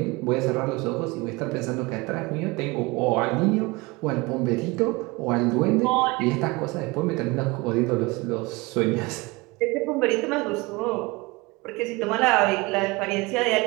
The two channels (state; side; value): quieter; left; 24.0 dB